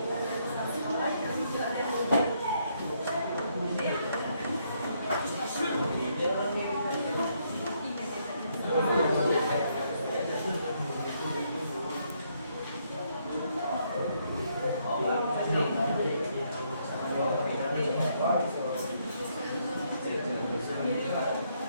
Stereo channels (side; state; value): both; inverted; correlation -0.73